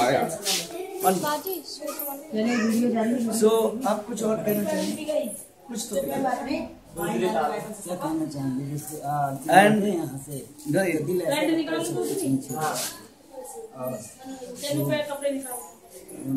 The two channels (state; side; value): identical; both; correlation 1.00